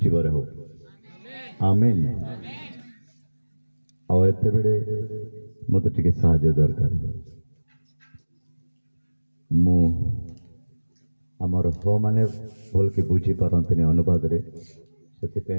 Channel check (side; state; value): both; inverted; correlation -1.00